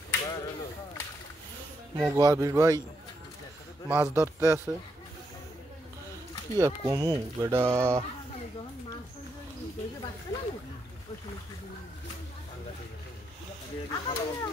মোবাবির ভাই মাছ ধরতে আছে কি আর কমু বেটা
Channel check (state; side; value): normal; both; correlation 0.80